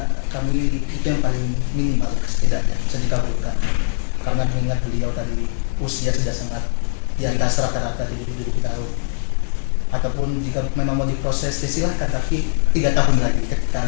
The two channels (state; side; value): silent; right; digital silence